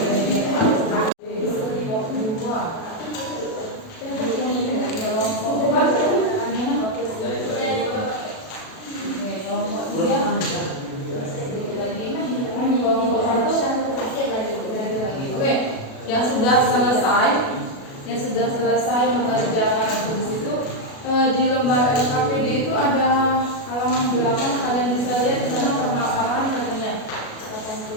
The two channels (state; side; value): late; right; 37 ms